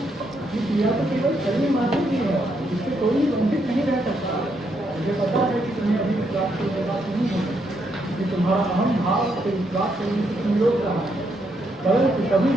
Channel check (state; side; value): normal; both; correlation 0.77